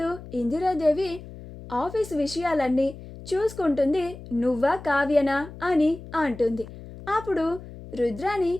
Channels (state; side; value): noise; left; hum, 15 dB below the sound